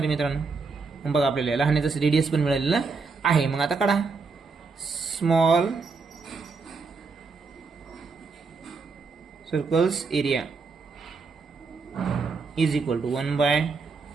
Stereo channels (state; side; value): quieter; left; 4.5 dB